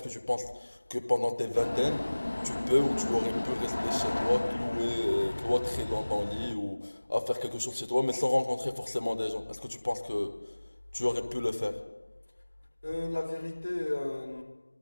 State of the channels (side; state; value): both; inverted; correlation -1.00